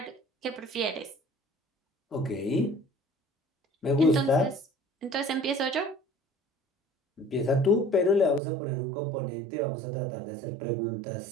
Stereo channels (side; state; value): left; drops out; at 8.4 s